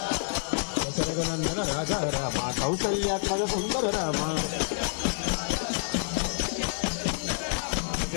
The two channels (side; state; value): right; silent; digital silence